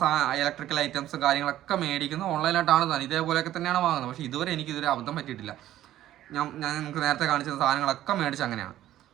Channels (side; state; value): left; quieter; 13.3 dB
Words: ഇലക്ട്രിക്കൽ ഐറ്റംസും കാര്യങ്ങളൊക്കെ മേടിക്കുന്നത് ഓൺലൈനായിട്ടാണ് തന്നെ, ഇതേപോലെയൊക്കെ തന്നെയാണ് വാങ്ങുന്നത്. പക്ഷേ ഇതുവരെ അബദ്ധം പറ്റിയിട്ടില്ല. ഞാൻ നിങ്ങൾക്ക് നേരത്തെ കാണിച്ച സാധനങ്ങളൊക്കെ മേടിച്ച് അങ്ങനെയാണ്.